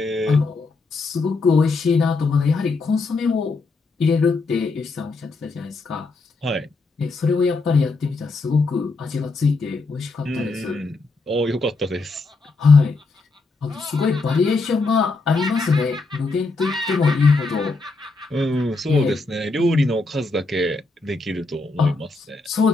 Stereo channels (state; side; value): quieter; right; 3.7 dB